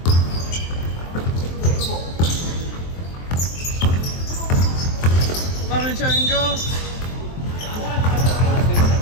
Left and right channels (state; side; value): late; right; 23 ms